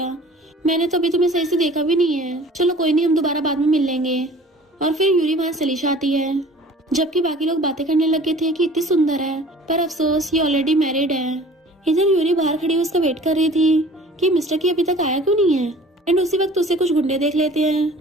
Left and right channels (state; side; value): normal; both; correlation 0.47